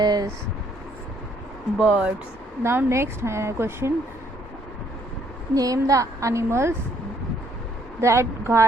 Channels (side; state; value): both; normal; correlation 0.67